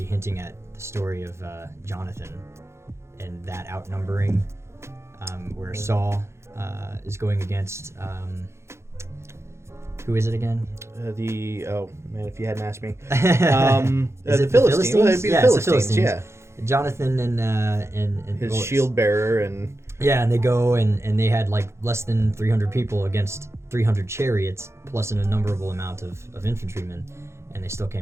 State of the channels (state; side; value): late; left; 0.13 ms